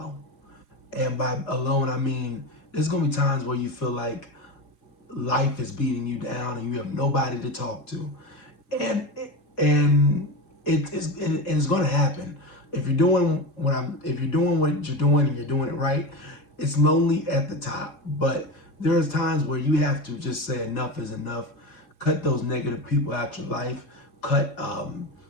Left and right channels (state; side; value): late; right; 3.7 ms